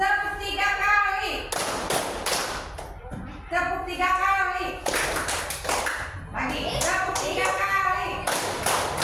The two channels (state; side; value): identical; both; correlation 1.00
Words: tiga kali. Tepuk tiga kali. Lagi. Tepuk tiga kali.